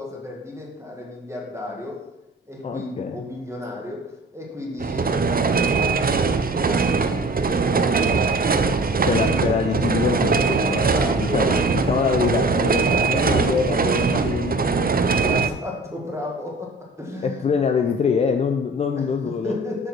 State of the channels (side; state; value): both; normal; correlation 0.44